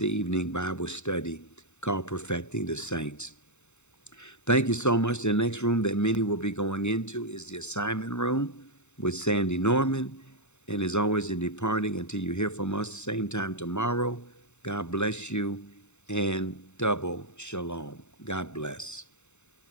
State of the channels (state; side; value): late; right; 0.82 ms